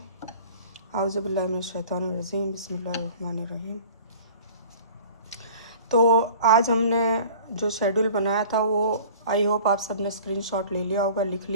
आऊज़ु बिल्लाहि मिनश शैतानिर रजीम, बिस्मिल्लाहिर रहमानिर रहीम। तो आज हमने जो शेड्यूल बनाया था वो आई होप आप सब ने स्क्रीनशॉट ले लिया होगा, लिख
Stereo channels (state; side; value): inverted; both; correlation -0.45